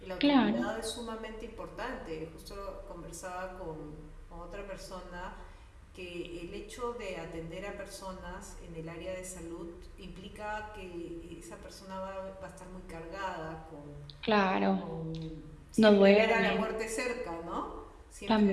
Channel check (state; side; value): identical; both; correlation 1.00